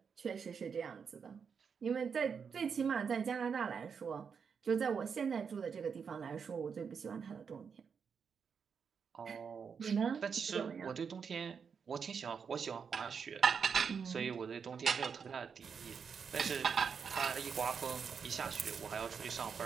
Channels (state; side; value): quieter; left; 6.3 dB